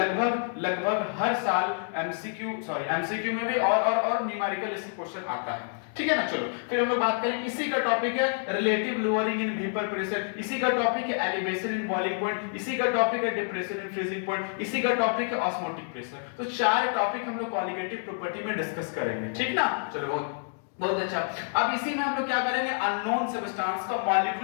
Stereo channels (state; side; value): silent; right; digital silence